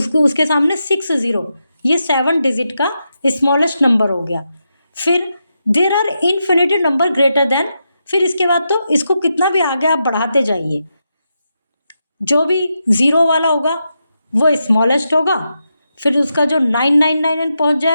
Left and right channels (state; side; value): inverted; both; correlation -0.86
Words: उसके सामने 6 0, ये 7 डिजिट का स्मॉलेस्ट नंबर हो गया। फिर there are infinity number greater than, फिर इसके बाद तो इसको कितना भी आगे आप बढ़ाते जाइए, जो भी 0 वाला होगा वो स्मॉलेस्ट होगा, फिर उसका जो 999 पहुंच